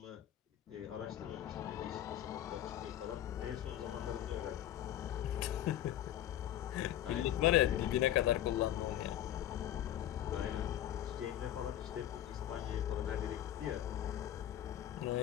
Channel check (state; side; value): quieter; right; 11.8 dB